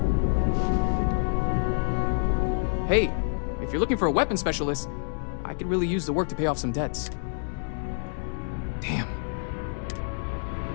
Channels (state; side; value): silent; right; digital silence